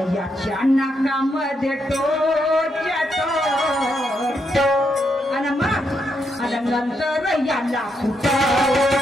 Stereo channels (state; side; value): normal; both; correlation 0.80